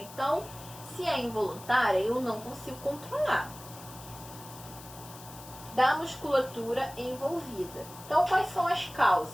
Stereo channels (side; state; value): left; noise; hiss, 17 dB below the sound